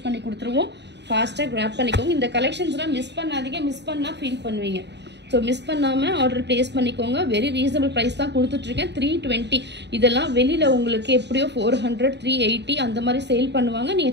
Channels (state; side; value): late; left; 0.50 ms